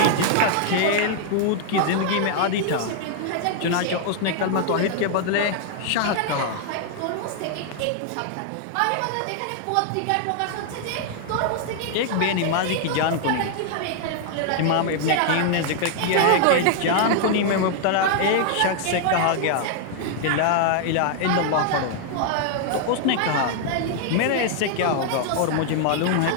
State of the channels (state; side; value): different; both; correlation 0.00